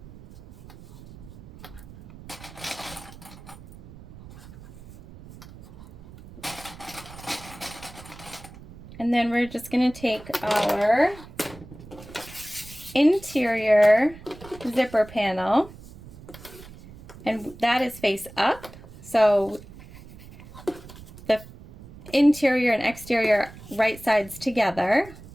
And then we're just going to take our interior zipper panel, and that is face up. So the interior and exterior right sides together.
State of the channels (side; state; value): right; noise; rumble, 18 dB below the sound